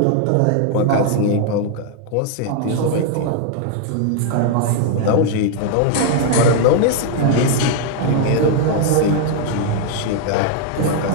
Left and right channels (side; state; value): both; different; correlation 0.00